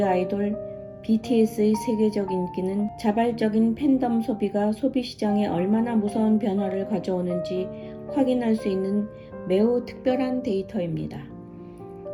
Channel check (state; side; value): identical; both; correlation 1.00